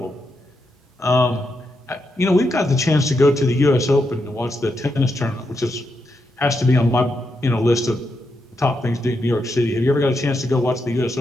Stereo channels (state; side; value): normal; both; correlation 0.83